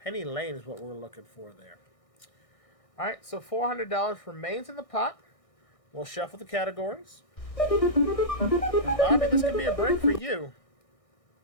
Lane is what we're looking for there. All right, so $400 remains in the pot. We'll shuffle the categories. And Bobby, this could be a break for you.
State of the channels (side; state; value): right; late; 1.6 ms